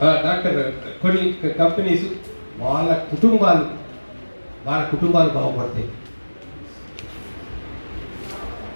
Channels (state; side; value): inverted; both; correlation -1.00